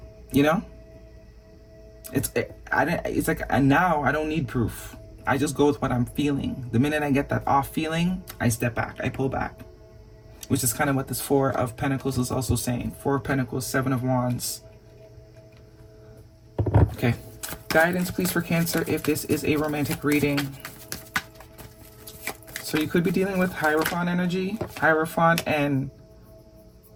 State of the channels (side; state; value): both; identical; correlation 1.00